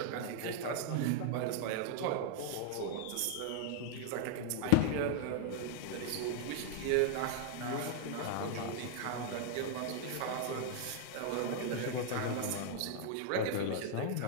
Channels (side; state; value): both; different; correlation 0.00